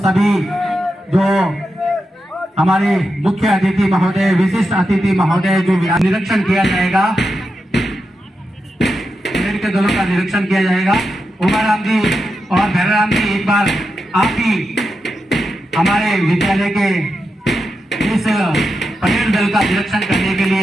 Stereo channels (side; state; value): both; normal; correlation 0.88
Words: जो हमारे मुख्य अतिथि महोदय, विशिष्ट अतिथि महोदय जो निरीक्षण किया जाएगा, के दलों का निरीक्षण किया जाएगा। उमाराम जी और भैराम जी, एक बार आप ही हमारे विद्यालय के इस परेड दल का निरीक्षण करने के